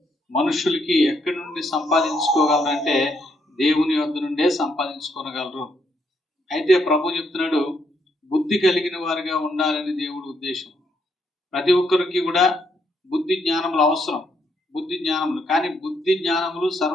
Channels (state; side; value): normal; both; correlation 0.75